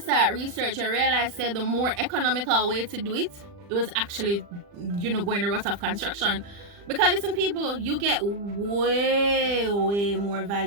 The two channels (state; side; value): late; left; 40 ms